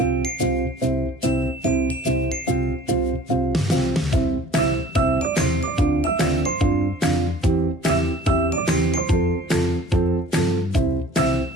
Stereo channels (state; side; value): normal; both; correlation 0.50